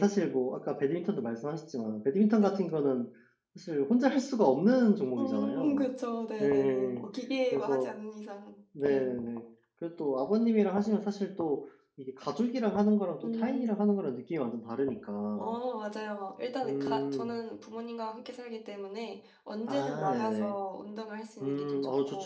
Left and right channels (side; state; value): both; identical; correlation 1.00